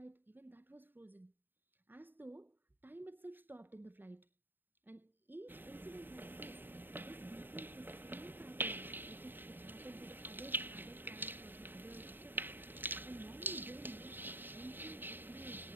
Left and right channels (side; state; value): left; late; 0.094 ms